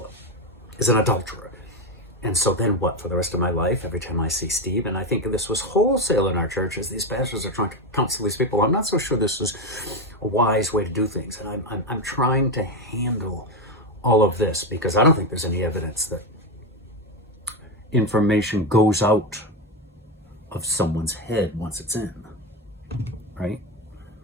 is an adulterer. And so then what for the rest of my life, every time I see Steve, and I think this was wholesale in our church as these pastors are trying to counsel these people. I'm not so sure this is a wise way to do things. And I'm trying to handle all of this because I don't think there's any evidence that information goes out of someone's head once it's in, right?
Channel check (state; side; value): normal; both; correlation 0.12